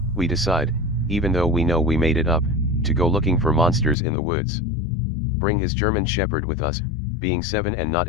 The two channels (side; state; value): right; drops out; at 4.0 s